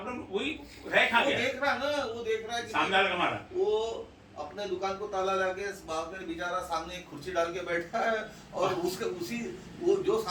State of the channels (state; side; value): identical; both; correlation 1.00